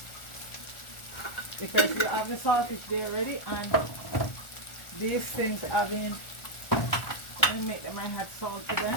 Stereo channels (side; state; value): right; late; 1.4 ms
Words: because you have the saltfish there already, and these things have been, I make them, I had salt to